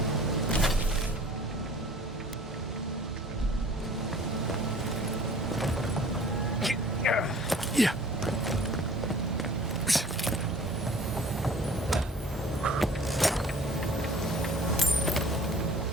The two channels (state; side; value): normal; both; correlation 0.49